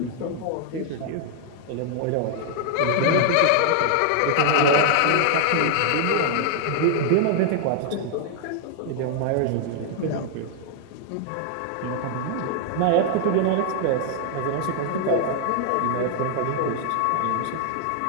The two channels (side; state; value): both; different; correlation 0.00